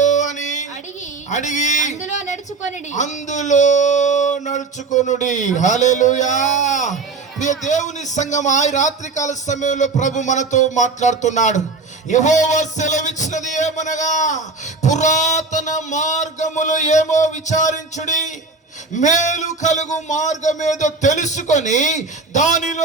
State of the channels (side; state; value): left; quieter; 3.9 dB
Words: అని అడిగి అందులో నడుచుకొనుడి. హల్లెలూయా. దేవుని సంఘం ఆ రాత్రికాల సమయంలో ప్రభు మనతో మాట్లాడుతున్నాడు. యెహోవా సెలవిచ్చినది ఏమనగా, పురాతన మార్గములు ఏమో విచారించుడి, మేలు కలుగు మార్గమేదో తెలుసుకొని